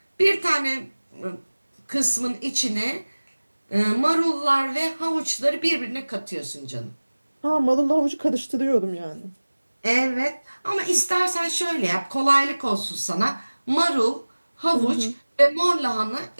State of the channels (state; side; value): inverted; both; correlation -1.00